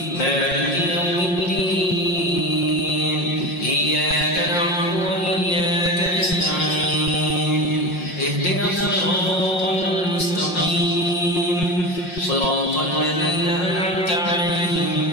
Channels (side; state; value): right; late; 5.6 ms